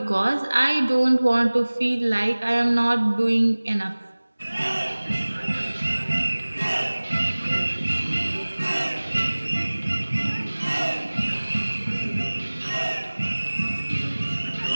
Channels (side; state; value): both; inverted; correlation -1.00